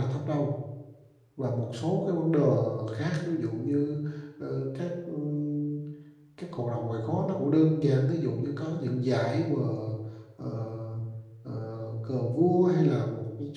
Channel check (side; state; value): both; identical; correlation 1.00